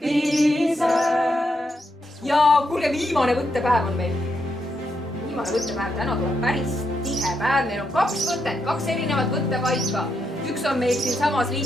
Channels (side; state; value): both; normal; correlation 0.81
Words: Ja kuulge, viimane võttepäev on meil. Viimane võttepäev, täna tuleb päris tihe päev. Meil on 2 võtet, 2 erinevat võttepaika. Üks on meil siin samas